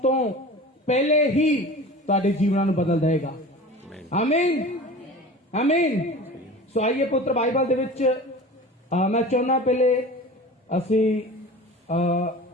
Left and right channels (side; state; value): both; normal; correlation 0.37